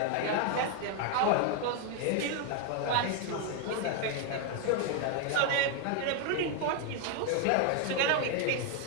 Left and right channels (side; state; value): both; different; correlation 0.01